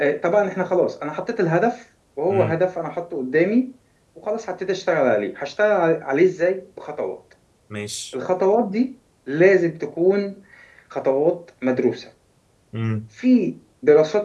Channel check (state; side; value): identical; both; correlation 1.00